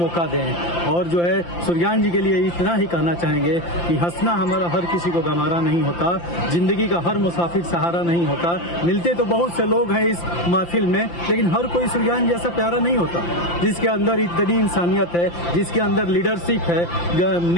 दें। और जो है सूर्यकांत जी के लिए इतना ही कहना चाहेंगे कि हंसना हमारा हर किसी को गंवारा नहीं होता, जिंदगी का हर मुसाफिर सहारा नहीं होता। मिलते तो बहुत से लोग हैं इस महफिल में, लेकिन हर कोई सूर्यकांत जैसा प्यारा नहीं होता, जिसके अंदर इतनी इंसानियत है, जिसके अंदर लीडरशिप है,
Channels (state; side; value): late; right; 5.8 ms